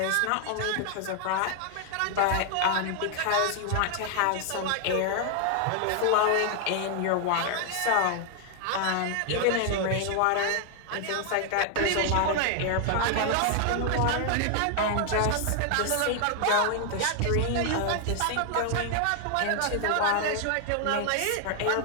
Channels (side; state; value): both; different; correlation 0.00